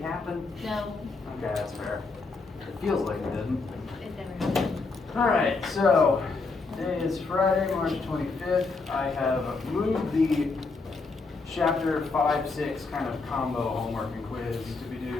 happen? No, Okay, that's fair. It feels like it didn't. it never happened. Alright, so today is Friday, March 25th. I have moved the chapter 5-6 kind of combo homework and quiz to be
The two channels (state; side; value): quieter; right; 4.0 dB